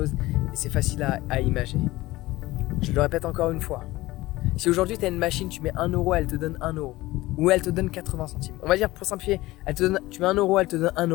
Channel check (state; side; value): quieter; right; 18.6 dB